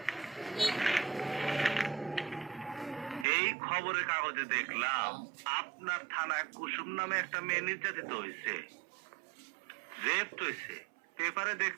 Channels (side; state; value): left; drops out; at 3.2 s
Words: এই খবরের কাগজে দেখলাম আপনার থানায় কুসুম নামে একটা মেয়ে নির্যাতিত হয়েছে, রেপড হয়েছে। পেপারে